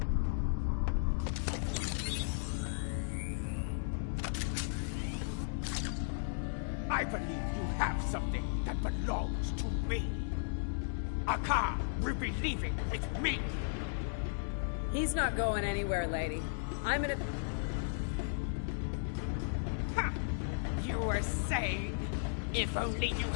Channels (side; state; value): right; silent; digital silence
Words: I believe you have something that belongs to me. A car will be leaving with me. He's not going anywhere, lady. I'm in a... Ha! You were saying, if only you